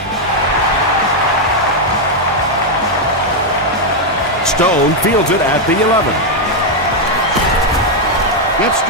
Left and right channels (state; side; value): normal; both; correlation 0.01